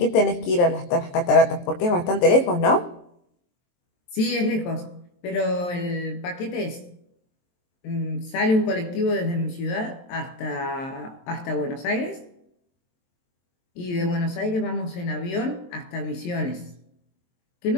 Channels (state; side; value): late; right; 23 ms